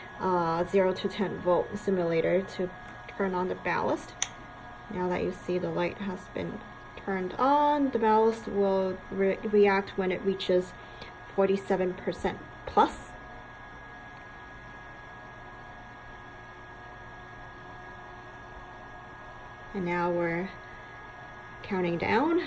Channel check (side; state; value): both; identical; correlation 1.00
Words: 0 to 10 volt simulator to turn on the ballast. Now that you see the light has been turned on, the ballast will react when it reaches 47% plus. And now we're counting down.